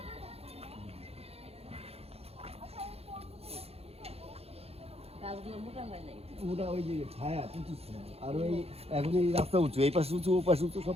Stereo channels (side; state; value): left; late; 0.29 ms